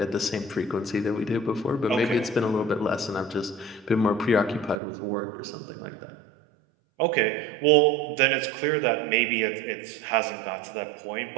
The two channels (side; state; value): left; drops out; at 4.8 s